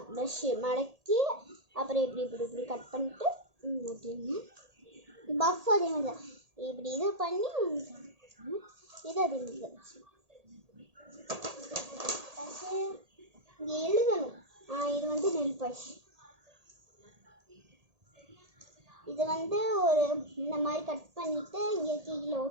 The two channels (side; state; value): left; late; 1.8 ms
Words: ப்ரஷ்ஷு மடக்கி அப்புறம் இப்படி கட் பண்ணிட்டு ஒட்டிடுங்க. பஃப் அதே மாதிரி தான். இப்படி இது பண்ணி இது அதே மாதிரி தான். இங்கே எழுதணும். இது வந்து நெல் பஷ். இது வந்து ஒரு இந்த மாதிரி கட் பண்ணிவிட்டு இங்கே கீழே